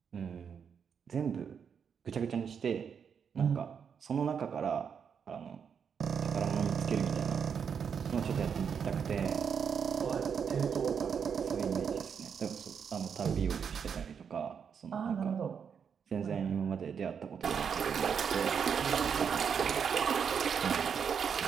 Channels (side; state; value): left; quieter; 7.0 dB